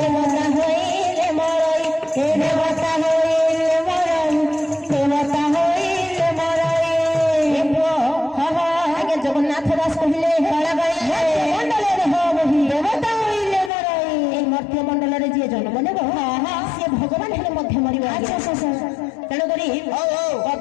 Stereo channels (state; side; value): drops out; right; at 13.7 s